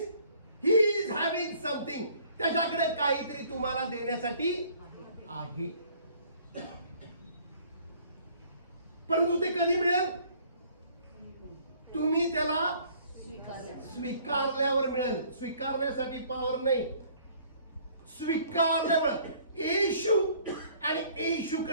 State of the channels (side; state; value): both; inverted; correlation -0.57